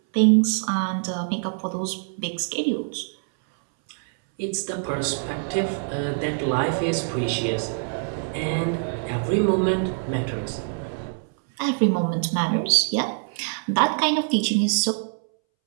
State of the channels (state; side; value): silent; left; 62 dB below the other